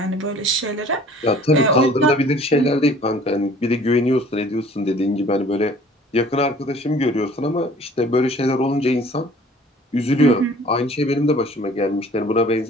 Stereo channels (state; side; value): normal; both; correlation 0.51